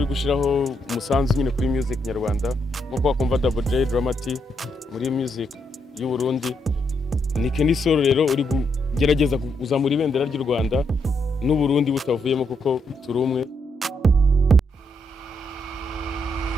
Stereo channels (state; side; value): normal; both; correlation 0.78